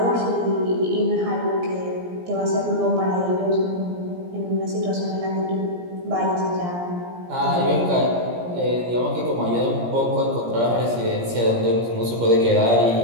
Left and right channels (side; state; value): left; late; 17 ms